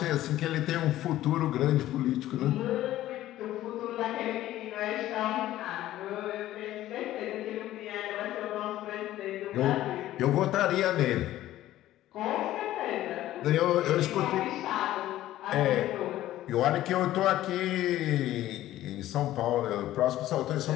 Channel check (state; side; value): quieter; right; 14.2 dB